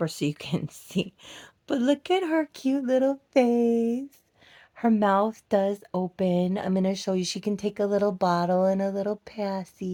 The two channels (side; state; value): both; identical; correlation 1.00